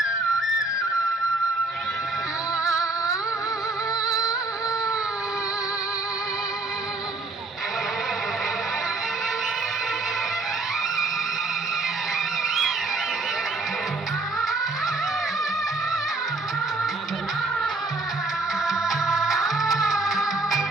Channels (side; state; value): left; quieter; 3.2 dB